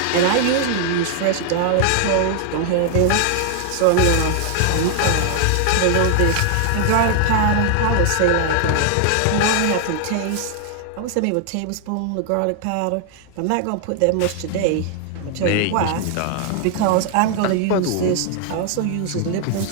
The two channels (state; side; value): different; both; correlation 0.00